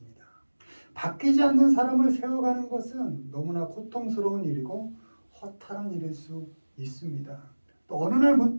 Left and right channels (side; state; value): both; inverted; correlation -1.00